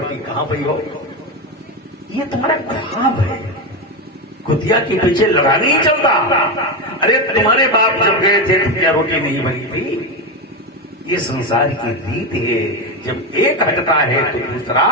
कहां पई हो। ये तुम्हारा ख्वाब है, कुतिया के पीछे लड़ा नहीं चलता। अरे तुम्हारे बाप जब गए थे तो क्या रोटी नहीं बनी थी? ये संसार की रीति है, जब एक हटता है तो दूसरा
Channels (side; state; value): both; normal; correlation 0.13